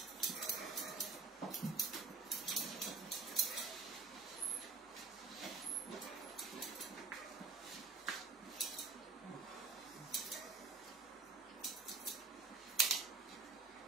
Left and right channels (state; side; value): quieter; left; 4.6 dB